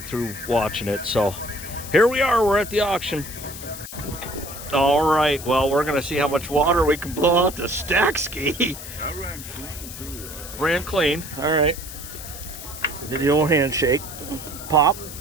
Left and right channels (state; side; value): noise; left; hiss, 12 dB below the sound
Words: through watching it. So here we are, we're at the auction. All right, well, we're gonna see how much water we can blow out the stack ski. I ran clean too. Ran clean, all right. Did the old handshake. Pop.